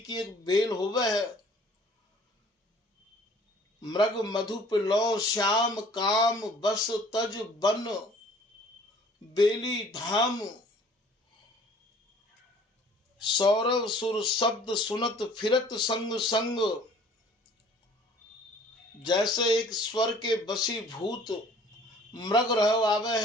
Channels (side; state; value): both; normal; correlation 0.53